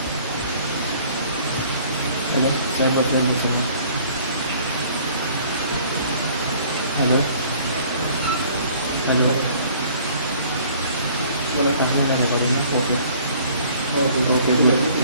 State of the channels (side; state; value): both; inverted; correlation -0.55